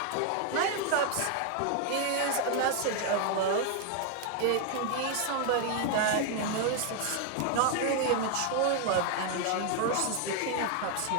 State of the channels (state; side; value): different; both; correlation 0.00